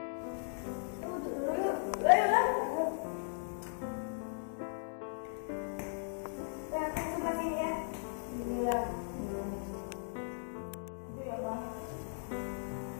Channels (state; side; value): silent; right; digital silence